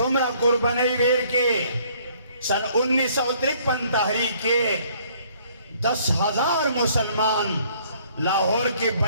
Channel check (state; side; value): inverted; both; correlation -0.61